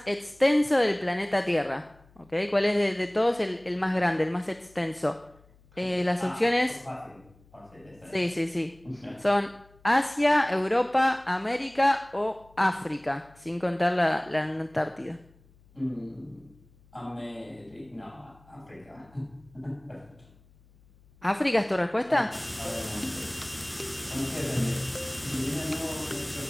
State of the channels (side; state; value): left; noise; hum, 28 dB below the sound